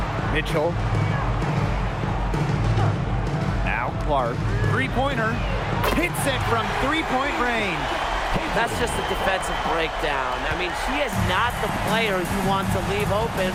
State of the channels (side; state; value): both; identical; correlation 1.00